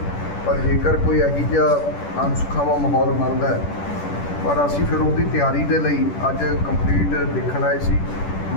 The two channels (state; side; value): late; right; 10 ms